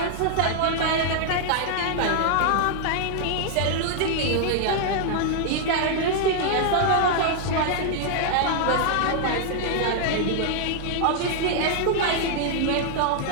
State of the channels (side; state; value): both; different; correlation -0.01